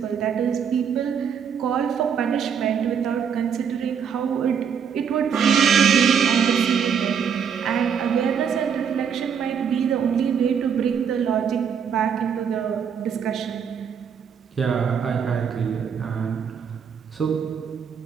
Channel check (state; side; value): quieter; left; 7.3 dB